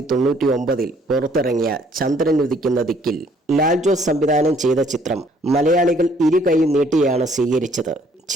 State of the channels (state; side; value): normal; both; correlation 0.63